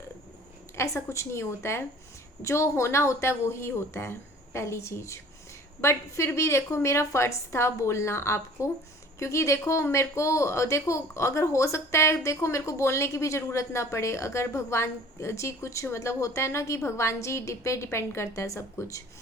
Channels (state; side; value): normal; both; correlation 0.49